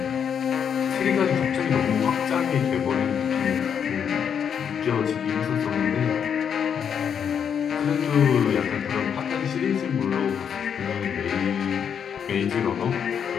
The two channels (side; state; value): right; quieter; 7.7 dB